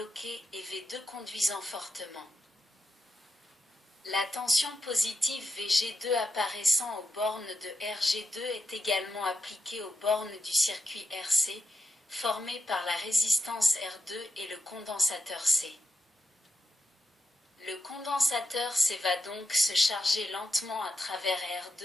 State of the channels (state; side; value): normal; both; correlation 0.84